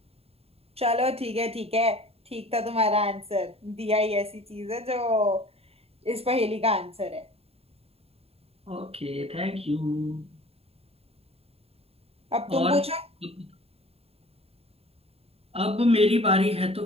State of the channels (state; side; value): late; left; 0.29 ms